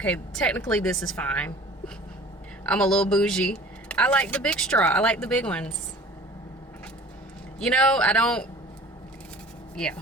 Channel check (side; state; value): both; normal; correlation 0.45